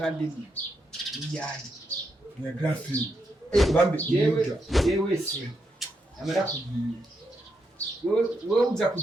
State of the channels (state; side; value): normal; both; correlation 0.81